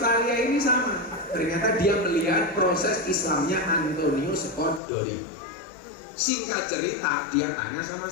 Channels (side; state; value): right; drops out; at 4.8 s